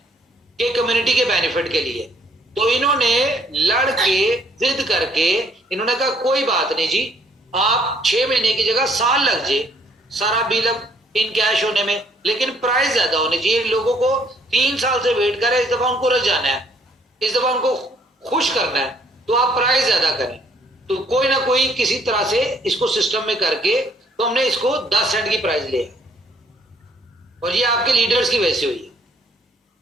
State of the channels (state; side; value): normal; both; correlation 0.65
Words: कि कम्युनिटी के बेनिफिट के लिए, तो इन्होंने लड़ के जिद करके इन्होंने कहा कोई बात नहीं जी, आप 6 महीने की जगह साल लग जाए सारा बिल अब इन कैश होने में, लेकिन प्राइस ज्यादा होनी चाहिए। लोगों को 3 साल से वेट करें, इस दफा उनको रजाना है, इस दफा उनको खुश करना है, तो आप प्राइस ज्यादा करें, तो कोई ना कोई किसी तरह से इसको सिस्टम में करके तो हमने इसको 10 सेंट की प्राइस लिया, और ये आपके लीडर्स की वजह से हुई है।